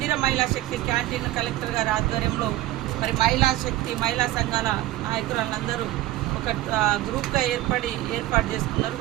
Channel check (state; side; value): quieter; left; 15.9 dB